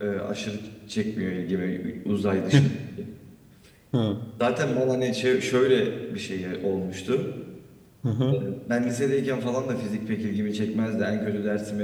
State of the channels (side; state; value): both; identical; correlation 1.00